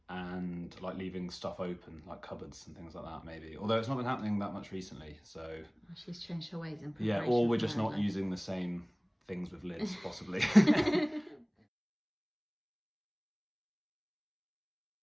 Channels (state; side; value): identical; both; correlation 1.00